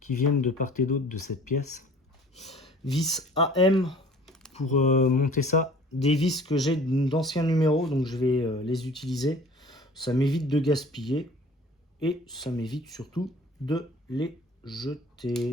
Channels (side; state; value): both; normal; correlation 0.48